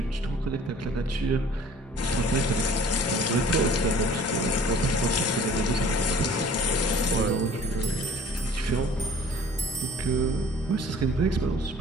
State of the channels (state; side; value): normal; both; correlation 0.50